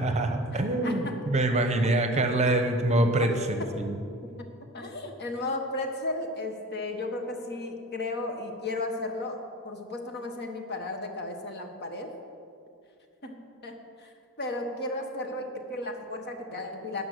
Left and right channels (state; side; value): normal; both; correlation 0.36